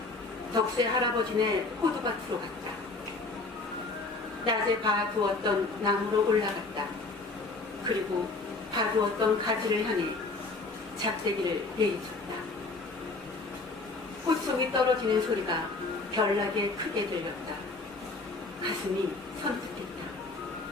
덕세 할아버지네 호두밭으로 갔다. 낮에 봐두었던 나무로 올라갔다. 그리고 봐두었던 가지를 향해 작대기를 내리쳤다. 꽃송이 떨어지는 소리가 별나게 크게 들렸다. 가슴이 선뜻했다.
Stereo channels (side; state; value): right; quieter; 3.5 dB